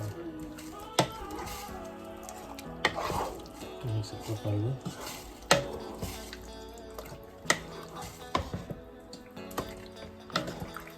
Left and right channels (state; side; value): identical; both; correlation 1.00